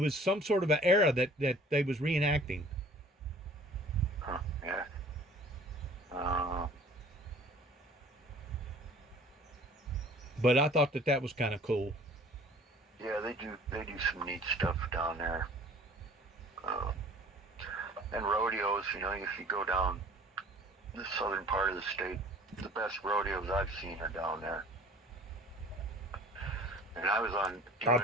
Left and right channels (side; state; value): both; normal; correlation 0.49